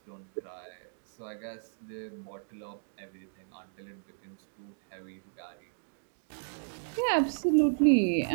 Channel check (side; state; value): left; silent; digital silence